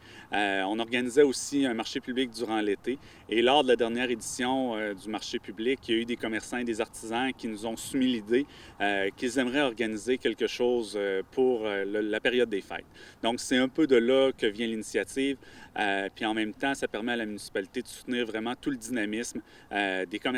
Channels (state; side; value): identical; both; correlation 1.00